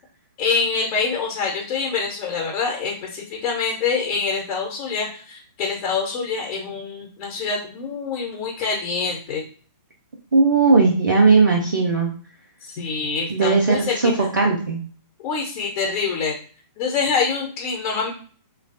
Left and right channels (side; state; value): both; inverted; correlation -0.40